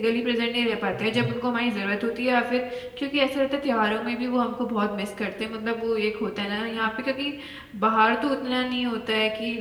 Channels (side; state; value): both; identical; correlation 1.00